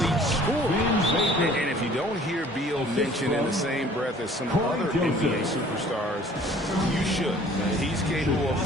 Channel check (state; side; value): normal; both; correlation 0.52